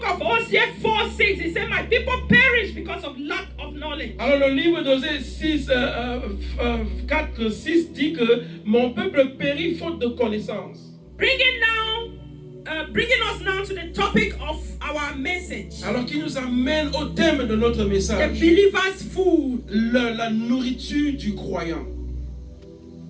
of Hosea 4:6, it said, my people perish because of lack of knowledge. Alors le livre d'Osée 4:6 dit que mon peuple périt faute de connaissance. Bringing us now to the topic of our message. Alors qui nous amène au thème de notre message. The believer's food. La nourriture du croyant.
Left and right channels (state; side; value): identical; both; correlation 1.00